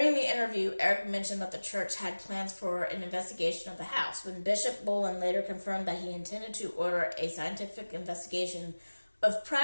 the interview, Eric mentioned that the church had plans for an investigation of the house. When Bishop Bullen later confirmed that he intended to order a scientific investigation of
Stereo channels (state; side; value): inverted; both; correlation -1.00